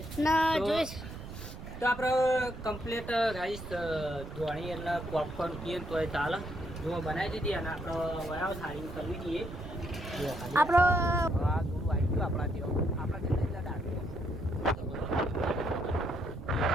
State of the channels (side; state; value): right; noise; rumble, 11 dB below the sound